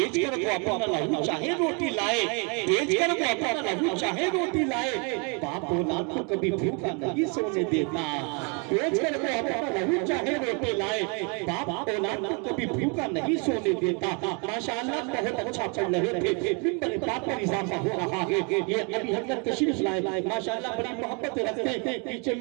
कर वो अपना लहू चाहे रोटी लाए, बेच कर वो अपना लहू चाहे रोटी लाए। बाप औलाद को कभी भूखा नहीं सोने देता। बेच कर वो अपना लहू चाहे रोटी लाए, बाप औलाद को कभी भूखा नहीं सोने देता। माशाअल्लाह बहुत अच्छा पढ़ रहे थे, मिंबर बाप पर इजाफा हो रहा है। ये अभी हजरत तशरीफ लाए, माशाअल्लाह बड़ी मोहब्बत रखते हैं। पीछे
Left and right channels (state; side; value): quieter; left; 34.5 dB